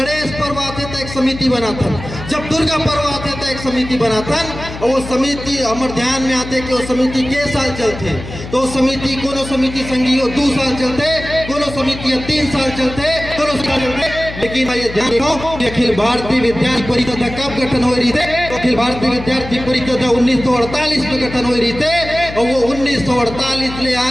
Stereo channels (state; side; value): noise; left; hum, 11 dB below the sound